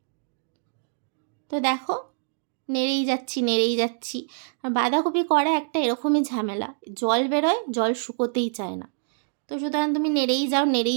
তো দেখো, নেড়েই যাচ্ছি নেড়েই যাচ্ছি। আর বাঁধাকপি করা একটা এরকমই ঝামেলা, জল বেরোয়, জল শুকোতেই চায় না। তো সুতরাং তুমি নেড়েই যাও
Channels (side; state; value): left; silent; digital silence